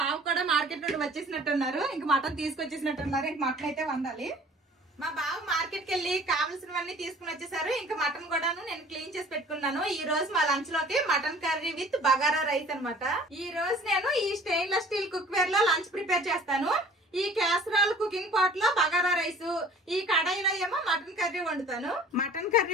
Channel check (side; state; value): both; normal; correlation 0.49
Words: బావ కూడా మార్కెట్ నుండి వచ్చేసినట్టున్నారు, ఇంకా మటన్ తీసుకొచ్చేసినట్టున్నారు. ఇంక మటన్ అయితే వండాలి. మా బావ మార్కెట్ కి వెళ్ళి కావాల్సినవన్నీ తీసుకుని వచ్చేసారు. ఇంకా మటన్ కూడాను నేను క్లీన్ చేసి పెట్టుకున్నాను. ఈ రోజు మా లంచ్ లోకి mutton curry with bagara rice అనమాట. ఈ రోజు నేను ఈ స్టెయిన్లెస్ స్టీల్ కుక్ వేర్ లో లంచ్ ప్రిపేర్ చేస్తాను. ఈ క్యాసరాల్ కుకింగ్ పాట్ లో బగారా రైస్, ఈ కడాయిలో ఏమో మటన్ కర్రీ వండుతాను. మటన్